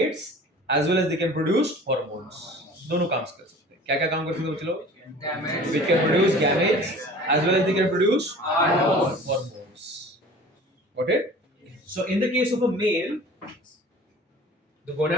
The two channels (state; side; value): normal; both; correlation 0.44